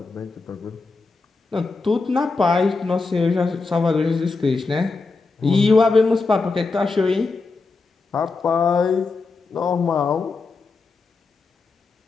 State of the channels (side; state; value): right; quieter; 4.0 dB